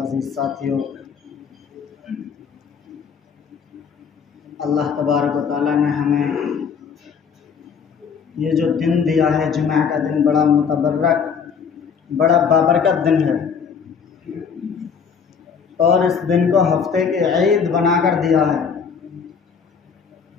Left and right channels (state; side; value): quieter; right; 6.4 dB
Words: साथियों, अल्लाह तबारक व तआला ने हमें ये जो दिन दिया है, जुमा का दिन, बड़ा मुतबर्रक, बड़ा बाबरकत दिन है और इस दिन को हफ्ते के ईद बनाकर दिया है।